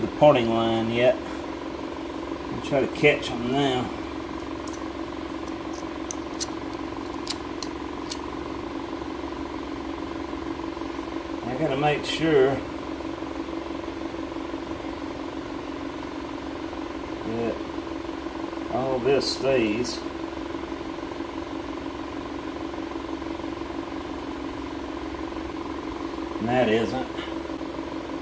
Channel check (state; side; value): identical; both; correlation 1.00